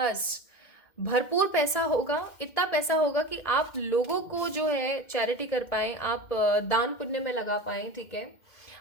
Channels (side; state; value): right; late; 2.1 ms